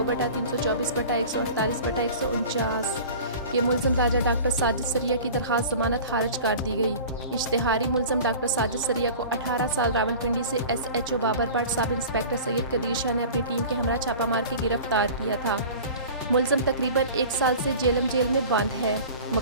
के मुलज़म राजा डॉक्टर साजिद सरिया की दरख्वास्त ज़मानत खारिज कर दी गई। इश्तिहारी मुलज़म डॉक्टर साजिद सरिया को 18 साल रावलपिंडी से SHO Babar Bhatt sub inspector Syed Qadeer Shah ने अपनी टीम के हमरा छापा मार के गिरफ्तार किया था। मुलज़म तकरीबन 1 साल से जेल में बंद है।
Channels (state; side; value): inverted; both; correlation -0.39